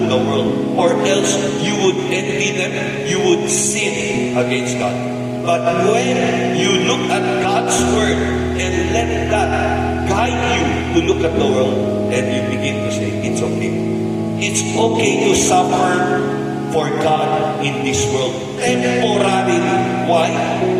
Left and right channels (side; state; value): both; identical; correlation 1.00